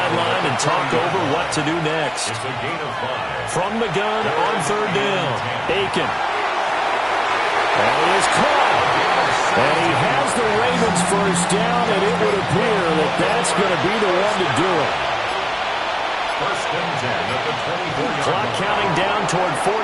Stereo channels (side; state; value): both; identical; correlation 1.00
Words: and talk over what to do next. It's a gain of 5. From the gun on 3rd down, Aiken. And he is caught. And he has the Ravens first down, and it would appear that that's going to be the one to do it. 1st and 10 at the 24-yard line. Clock counting down toward